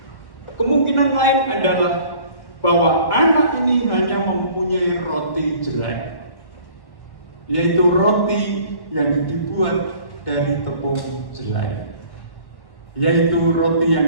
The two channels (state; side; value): late; right; 1.1 ms